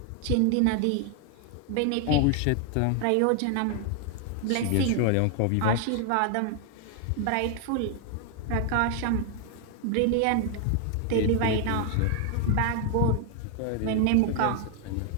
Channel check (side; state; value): both; different; correlation 0.00